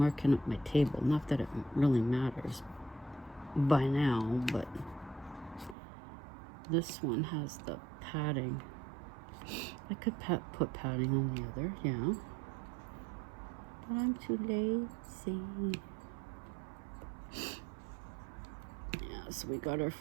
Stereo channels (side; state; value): left; drops out; at 5.8 s